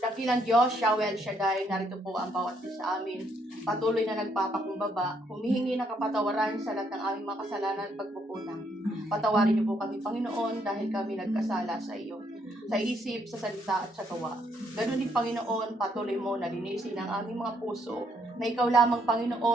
Diyos, Yahweh El Shaddai, narito po ang bawat isa sa amin. Patuloy na nagpapakumbaba, humihingi ng kapatawaran sa lahat ng aming mga kasalanan at pagkukulang. Patawarin niyo po kami, Panginoon, dahil kami nagkasala sa iyo. Sa isip, sa salita at sa gawa. Ganun din, Panginoon, patuloy mo na linisin ang aming mga puso na ikaw lamang,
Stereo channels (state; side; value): normal; both; correlation 0.72